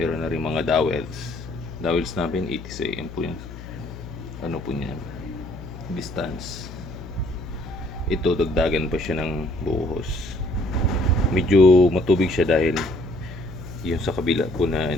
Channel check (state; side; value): noise; left; hum, 13 dB below the sound